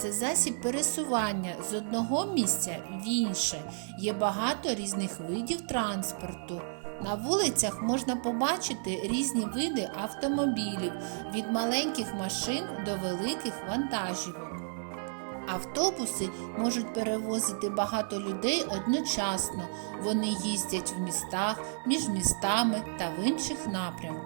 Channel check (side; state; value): left; silent; 57 dB below the other